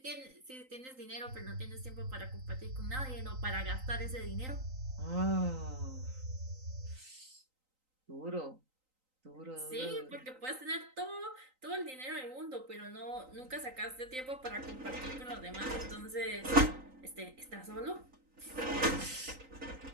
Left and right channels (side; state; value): left; late; 3.9 ms